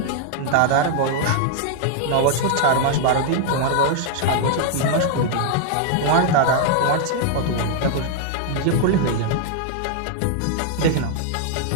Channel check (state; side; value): different; both; correlation 0.00